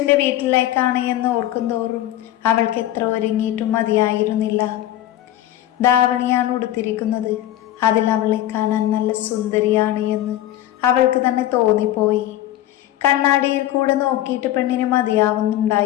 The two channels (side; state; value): right; quieter; 13.4 dB